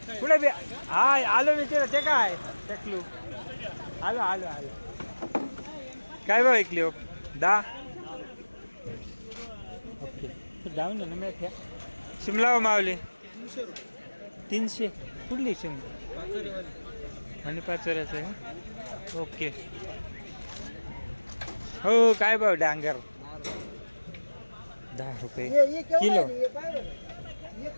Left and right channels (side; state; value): both; inverted; correlation -1.00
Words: कुठे बी हा आलो मी ते काय टकलू आलो आलो आलो. काय भाव विकली हो? 10. ओके जाऊन ना मी शिमला हो मावली 300. कुठली शिमला? आणि 5 आहे. ओके. हो काय भाव डांगर? 10 रुपये किलो.